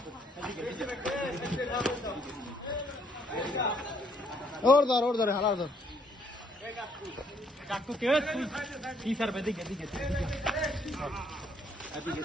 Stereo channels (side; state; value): both; normal; correlation 0.68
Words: ওর ধর হালার ধর কাকু কে কি স্যার দিকে